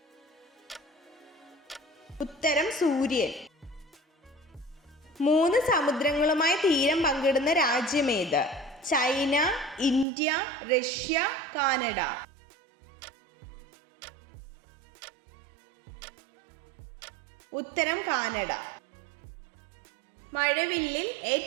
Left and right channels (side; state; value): left; drops out; at 10.1 s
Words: ഉത്തരം സൂര്യൻ. 3 സമുദ്രങ്ങളുമായി തീരം പങ്കിടുന്ന രാജ്യം ഏത്? China, India, Russia, Canada. ഉത്തരം കാനഡ. മഴവില്ലിൽ